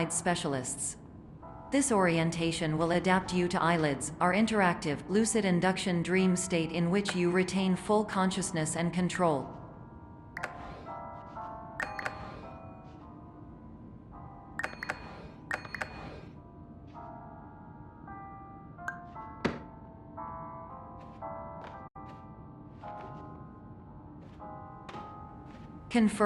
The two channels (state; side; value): identical; both; correlation 1.00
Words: specialists. This orientation will adapt you to eyelids, our interactive, lucid induction dream state in which you retain full consciousness and control.